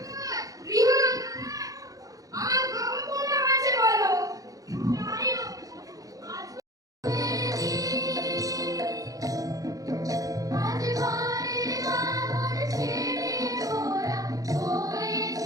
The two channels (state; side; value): late; left; 0.17 ms